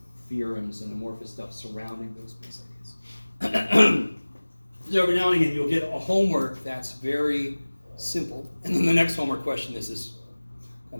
theorems and amorphous stuff surrounding those base ideas. So every now and again you'll get a homework that's very simple, and then the next homework question is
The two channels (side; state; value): both; inverted; correlation -1.00